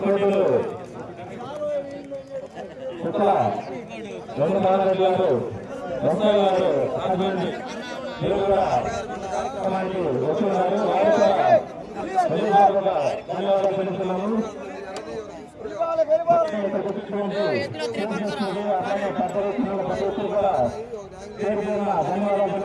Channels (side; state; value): both; identical; correlation 1.00